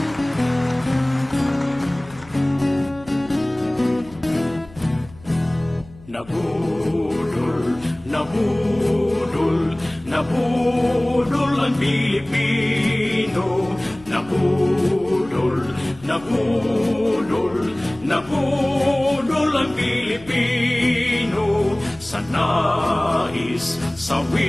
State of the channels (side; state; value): left; noise; hum, 22 dB below the sound